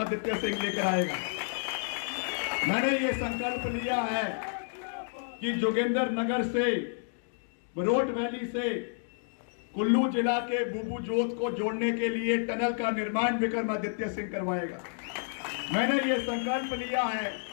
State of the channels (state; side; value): silent; right; digital silence